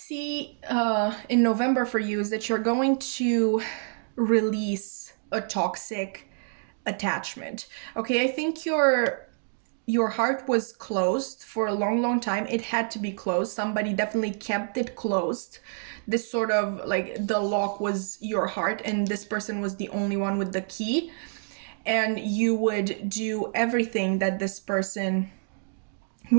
in November for you is that you're going to release a toxic attachment. Okay, I think your heart was closed for a long time. It had to be closed. Somebody definitely kept it closed. This sort of like the lock was your heart and this person was the only one with the key, and you would do everything that this person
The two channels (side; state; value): left; silent; digital silence